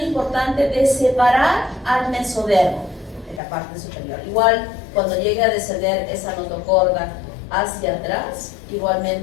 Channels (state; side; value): drops out; right; at 3.4 s